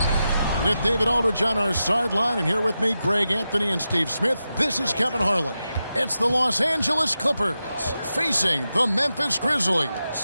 With David Aldridge on our sideline, and here with me, Greg Anthony and Steve Smith. This is Kevin Harlan. It's the Los Angeles Clippers facing the Memphis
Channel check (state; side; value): inverted; both; correlation -0.90